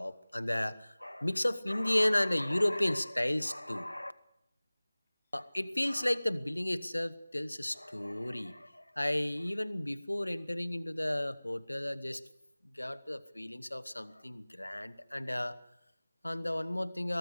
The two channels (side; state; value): both; inverted; correlation -1.00